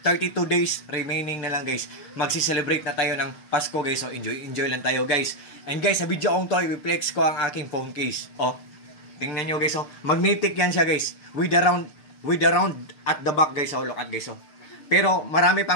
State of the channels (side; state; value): right; late; 6.6 ms